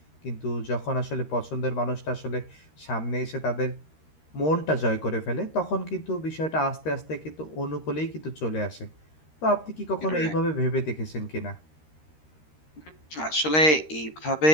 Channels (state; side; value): late; right; 13 ms